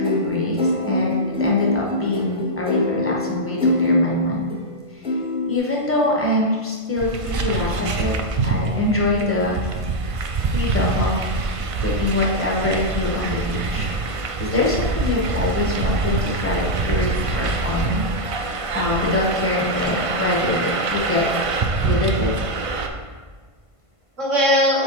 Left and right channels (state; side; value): late; left; 1.5 ms